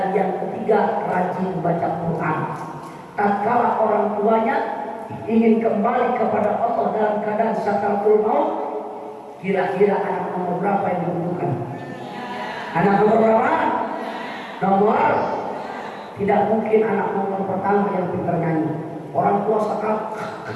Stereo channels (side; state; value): both; identical; correlation 1.00